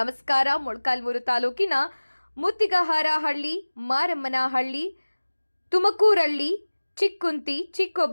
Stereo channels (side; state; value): both; inverted; correlation -1.00